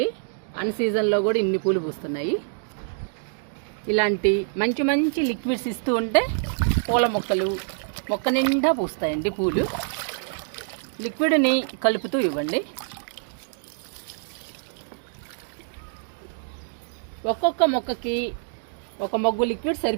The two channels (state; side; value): silent; left; digital silence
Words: అన్ సీజన్లో కూడా ఇన్ని పూలు పూస్తున్నాయి. ఇలాంటి మంచి మంచి లిక్విడ్స్ ఇస్తూ ఉంటే పూల మొక్కలు మొక్క నిండా పూస్తాయండి పూలు. లిక్విడ్ని కలుపుతూ ఇవ్వండి. ఒక్కొక్క మొక్కకి ఒక మొగ్గు లిక్విడ్